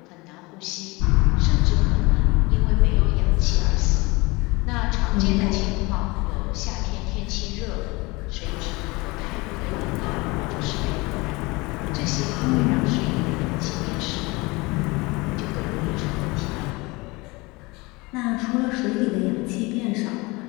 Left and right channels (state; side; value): quieter; right; 24.2 dB